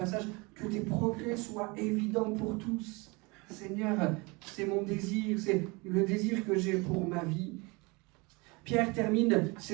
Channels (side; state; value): left; quieter; 27.0 dB